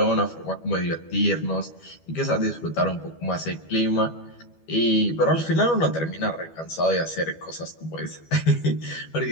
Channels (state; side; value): late; right; 12 ms